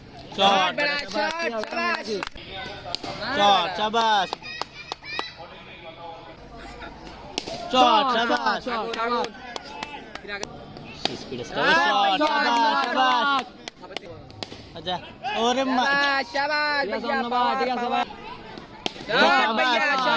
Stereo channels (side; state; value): both; identical; correlation 1.00